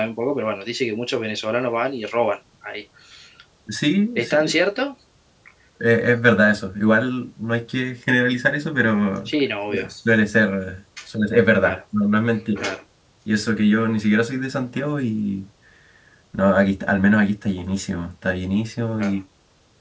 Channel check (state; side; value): identical; both; correlation 1.00